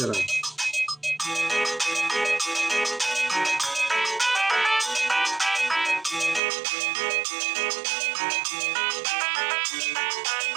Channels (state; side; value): drops out; left; at 6.4 s